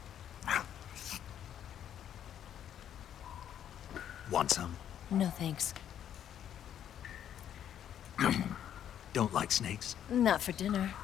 Want some? No thanks. Don't like snakes? Not for dinner.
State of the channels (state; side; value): quieter; right; 10.0 dB